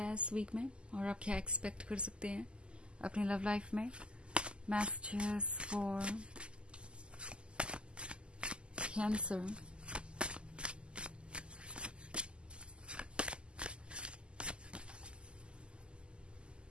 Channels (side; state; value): left; late; 0.051 ms